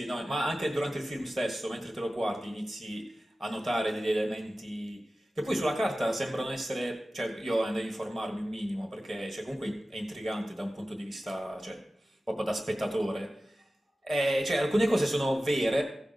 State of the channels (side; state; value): both; normal; correlation 0.95